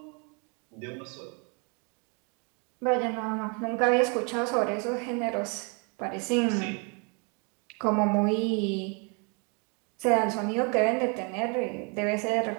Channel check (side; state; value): left; quieter; 34.7 dB